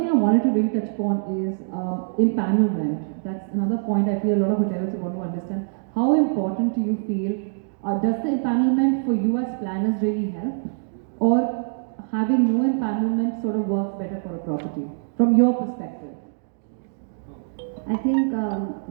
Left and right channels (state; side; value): silent; left; digital silence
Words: I wanted to really touch upon is empanelment. That's another point I feel a lot of hoteliers want to understand. How important do you feel, does the empanelment for you as planners really help, or having no empanelment sort of works better for a property from your perspective? I think,